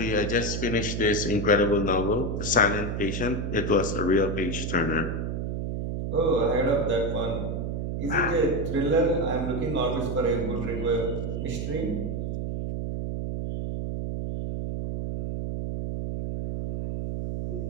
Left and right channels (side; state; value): right; noise; hum, 2 dB below the sound